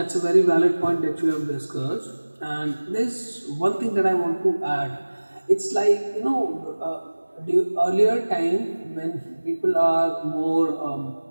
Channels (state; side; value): inverted; both; correlation -1.00